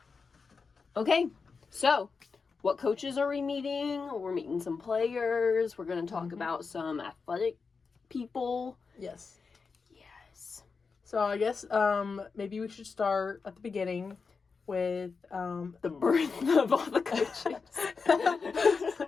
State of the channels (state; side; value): quieter; right; 4.9 dB